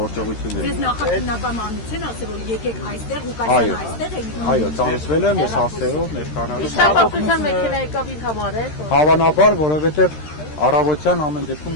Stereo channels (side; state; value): right; late; 13 ms